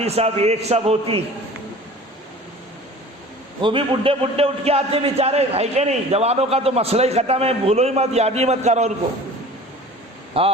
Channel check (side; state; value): both; normal; correlation 0.42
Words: صاحب ایک سب ہوتی، وہ بھی بڈھے اٹھ کے آتے بیچارے، ہے کہ نہیں؟ جوانوں کا تو مسئلہ ہی ختم ہے، بھولو ہی مت، یاد ہی مت کرو ان کو.